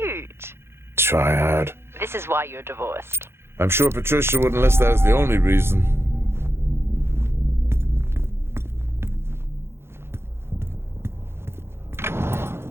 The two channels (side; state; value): left; late; 0.12 ms